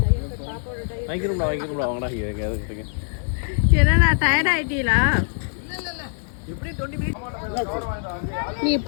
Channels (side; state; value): right; silent; digital silence